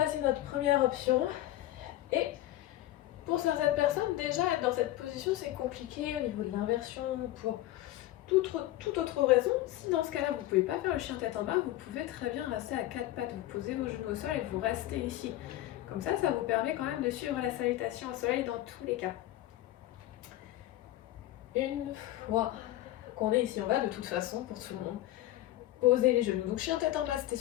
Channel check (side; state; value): right; quieter; 15.0 dB